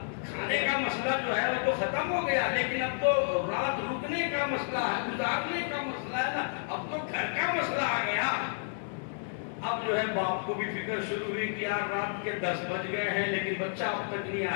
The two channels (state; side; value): silent; right; 57 dB below the other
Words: کھانے کا مسئلہ جو ہے وہ تو ختم ہو گیا، لیکن اب تو رات رکنے کا مسئلہ ہے، گزارنے کا مسئلہ ہے نا، اب تو گھر کا مسئلہ آ گیا۔ اب جو ہے باپ کو بھی فکر شروع ہوئی کہ یار رات کے 10 بج گئے ہیں لیکن بچہ اب تک نہیں